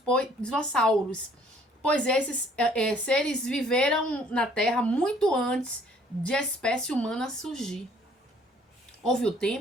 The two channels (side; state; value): both; normal; correlation 0.59